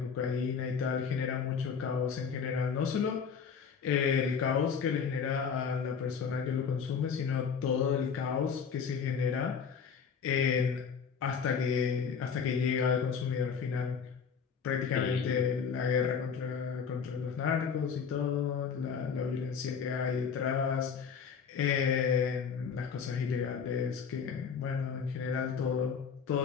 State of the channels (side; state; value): right; quieter; 6.5 dB